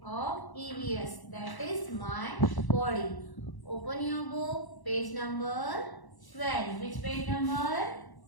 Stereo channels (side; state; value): right; late; 1.0 ms